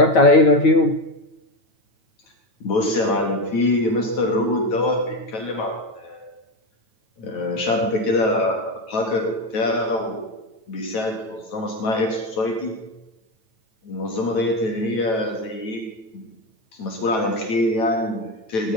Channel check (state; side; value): late; right; 9.1 ms